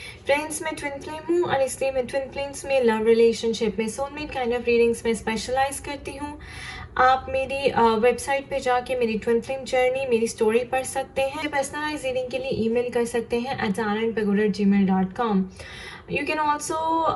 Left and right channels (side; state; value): both; identical; correlation 1.00